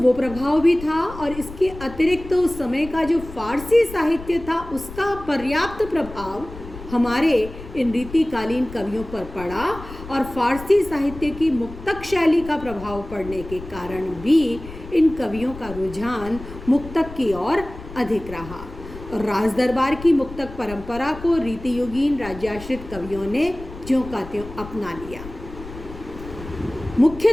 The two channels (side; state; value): left; noise; rumble, 14 dB below the sound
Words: प्रभाव भी था और इसके अतिरिक्त उस समय का जो फारसी साहित्य था उसका पर्याप्त प्रभाव हमारे इन रीतिकालीन कवियों पर पड़ा और फारसी साहित्य की मुक्तक शैली का प्रभाव पड़ने के कारण भी इन कवियों का रुझान मुक्तक की ओर अधिक रहा और राज दरबार की मुक्तक परंपरा को रीतियुगीन राज्याश्रित कवियों ने ज्यों का त्यों अपना लिया।